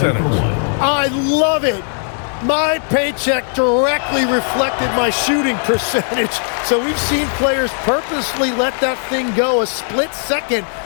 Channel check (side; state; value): right; silent; 57 dB below the other